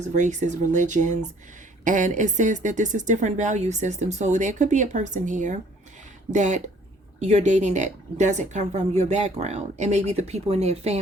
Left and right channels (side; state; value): both; normal; correlation 0.58